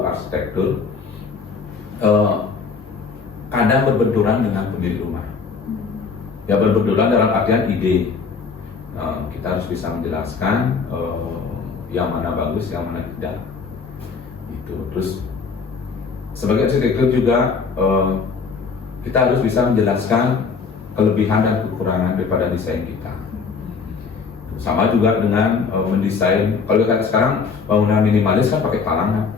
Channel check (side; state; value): right; quieter; 5.2 dB